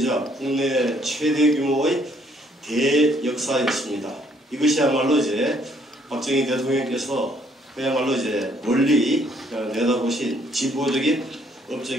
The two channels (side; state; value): both; normal; correlation 0.66